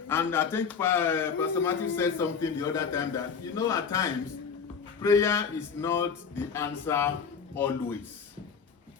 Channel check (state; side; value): quieter; right; 6.2 dB